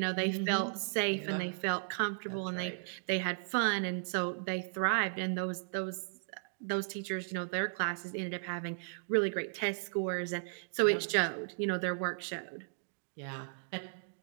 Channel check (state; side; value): silent; left; digital silence